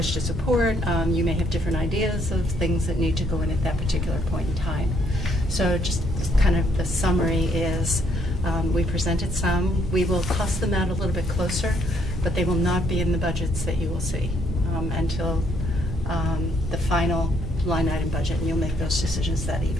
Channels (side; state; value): both; normal; correlation 0.69